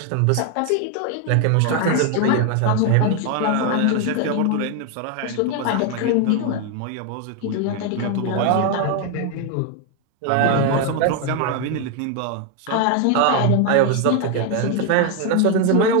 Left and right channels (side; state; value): both; different; correlation 0.01